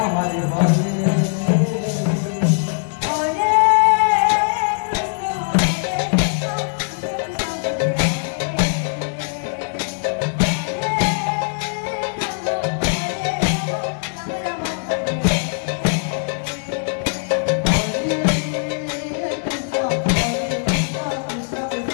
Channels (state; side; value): silent; right; 65 dB below the other